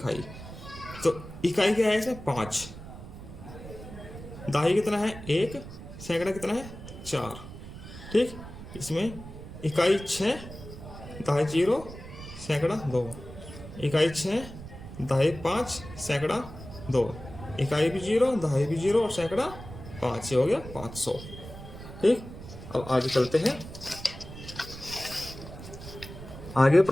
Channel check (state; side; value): noise; right; rumble, 13 dB below the sound